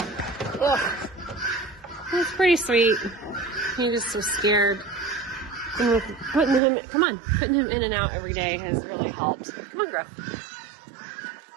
he's pretty sweet. He just was scared. And with putting him in and out every day has really helped. Come on, Gruff.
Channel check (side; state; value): left; drops out; at 6.6 s